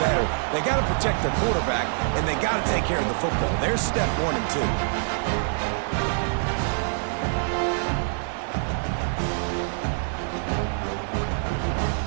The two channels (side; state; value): left; silent; digital silence